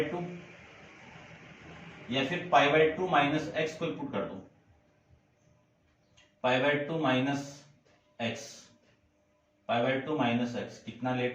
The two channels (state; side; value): identical; both; correlation 1.00